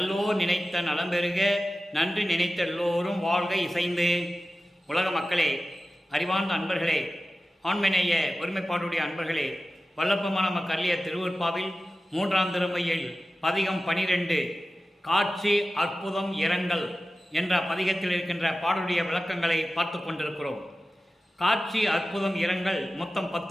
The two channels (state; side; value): normal; both; correlation 0.94